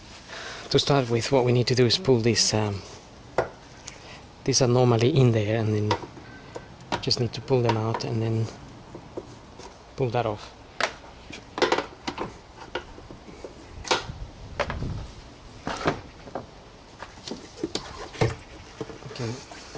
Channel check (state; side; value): identical; both; correlation 1.00